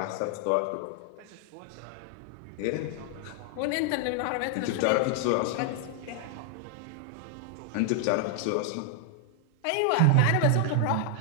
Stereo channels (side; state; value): both; different; correlation 0.00